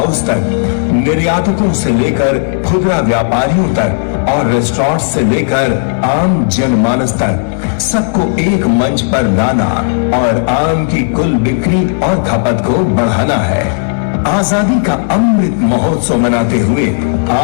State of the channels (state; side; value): silent; right; digital silence